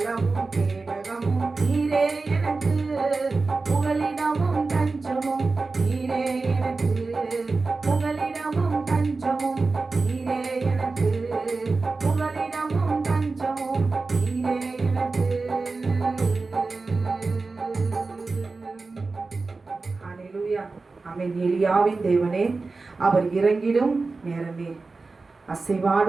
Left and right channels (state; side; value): quieter; left; 3.9 dB